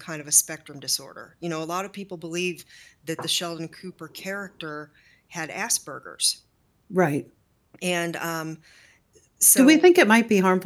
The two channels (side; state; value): both; identical; correlation 1.00